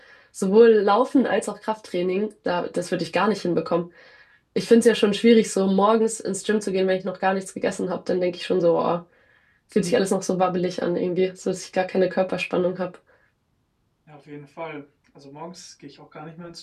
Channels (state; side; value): identical; both; correlation 1.00